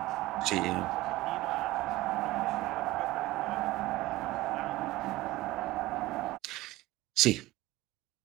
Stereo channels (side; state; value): left; quieter; 18.2 dB